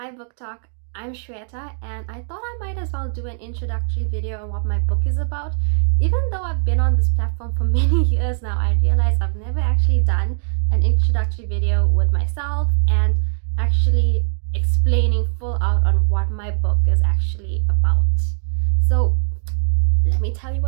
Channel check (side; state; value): left; silent; digital silence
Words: Book Talk, I'm Shweta and I thought I might as well do an introductory video on what my book is about. Even though I've been on this platform for many years now, I realize I've never actually done an introductory video with myself and actually explaining full out on what my book is actually about. So let me tell you